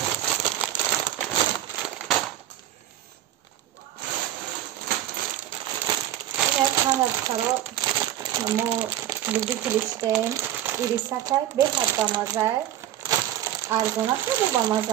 Духтаро мо любители штем ирисакай беҳад бамазае. Арзона хеле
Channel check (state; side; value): quieter; left; 12.4 dB